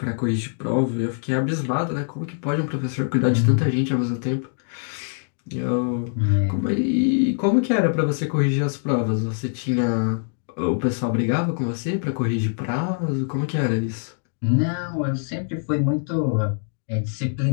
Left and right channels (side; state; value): right; silent; digital silence